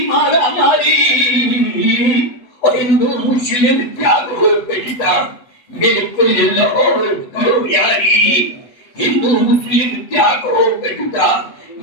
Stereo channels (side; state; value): right; late; 7.8 ms